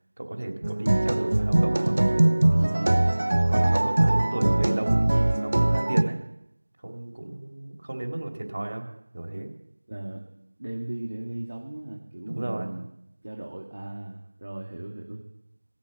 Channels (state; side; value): inverted; both; correlation -1.00